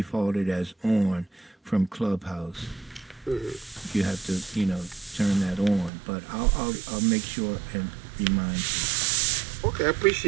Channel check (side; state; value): left; drops out; at 5.9 s